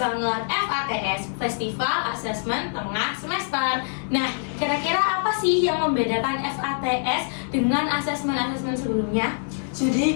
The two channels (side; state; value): right; silent; digital silence